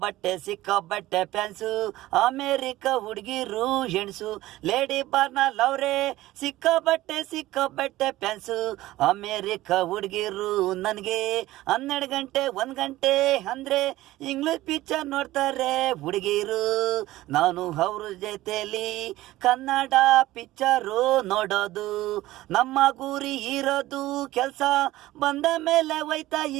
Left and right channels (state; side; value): quieter; left; 16.6 dB